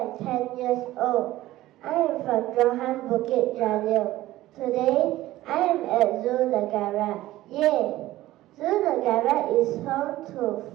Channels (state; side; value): quieter; left; 16.0 dB